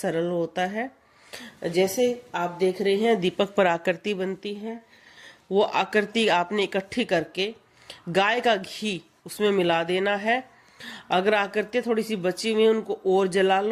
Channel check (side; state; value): both; identical; correlation 1.00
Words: होता है। जैसे आप देख रहे हैं दीपक पर आकृति बनती है, वो आकृति आपने इकट्ठी करके गाय का घी उसमें मिला देना है। अगर आकृतियां थोड़ी सी बची हुई उनको और जला